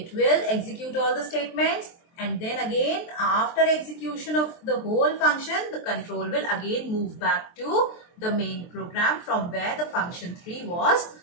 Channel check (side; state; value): right; late; 23 ms